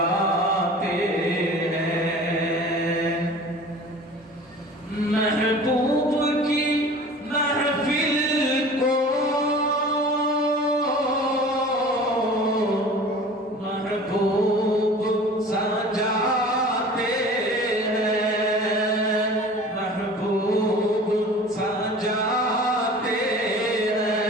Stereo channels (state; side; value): normal; both; correlation 0.42